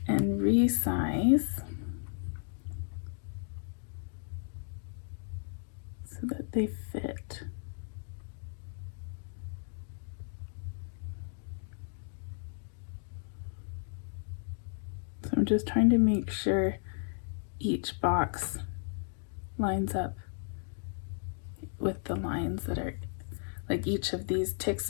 and resize so that they fit. So I'm just trying to make sure each box lines up with the lines that are, like each of these tick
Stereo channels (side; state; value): right; silent; digital silence